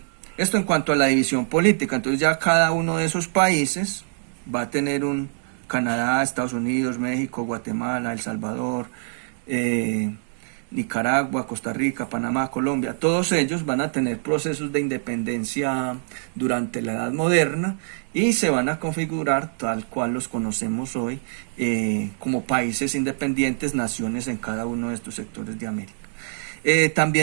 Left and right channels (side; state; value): left; silent; digital silence